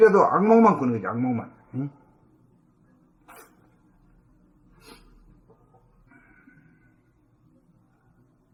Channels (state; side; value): identical; both; correlation 1.00